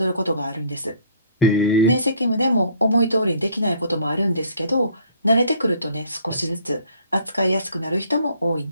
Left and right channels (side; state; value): both; inverted; correlation -0.58